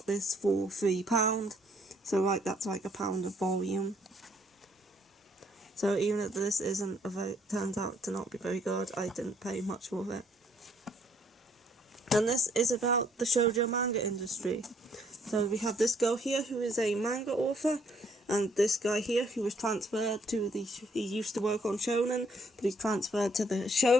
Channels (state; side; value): normal; both; correlation 0.67